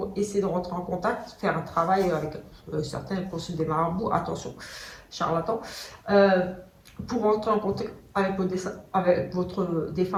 essayer de rentrer en contact, faire un travail avec certains consultent des marabouts, attention, charlatans, pour rentrer en contact avec votre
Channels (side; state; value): both; identical; correlation 1.00